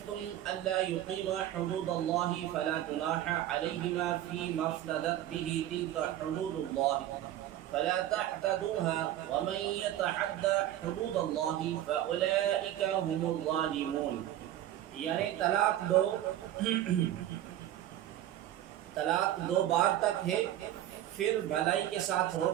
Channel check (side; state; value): left; quieter; 12.7 dB